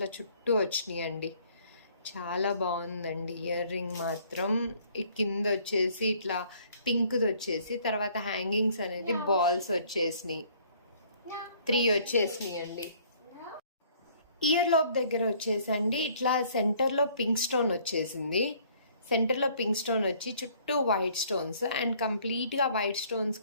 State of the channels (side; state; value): both; inverted; correlation -0.59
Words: చుట్టూ వచ్చినాయి అండి. చాలా బాగుందండి ఇయర్ రింగ్ మాత్రం. ఈ కింద వచ్చేసి ఇట్లా పింక్ది వచ్చేసి, తర్వాత హ్యాంగింగ్స్ అనేది బాల్స్ వచ్చేసినాయి, 3 వచ్చేసినాయి అండి. ఇయర్ లోప్ దగ్గర వచ్చేసండి ఇట్లా సెంటర్లో పింక్ స్టోన్ వచ్చేసింది. సెంటర్లో పింక్ స్టోన్ వచ్చి చుట్టూ వైట్ స్టోన్స్, అండ్ కంప్లీట్గా వైట్